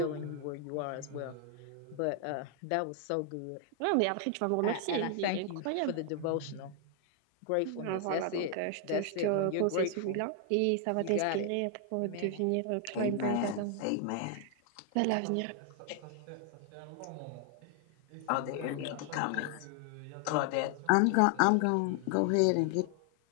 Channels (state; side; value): different; both; correlation 0.00